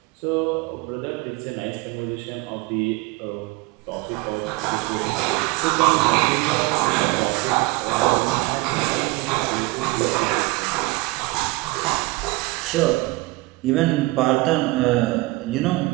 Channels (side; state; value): left; quieter; 22.3 dB